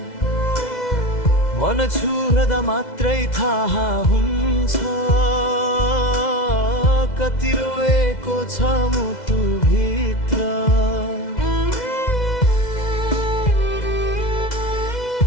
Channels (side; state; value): right; late; 2.0 ms